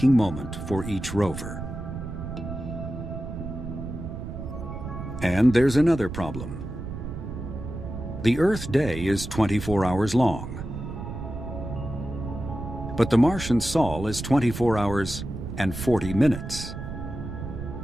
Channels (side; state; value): right; noise; rumble, 8 dB below the sound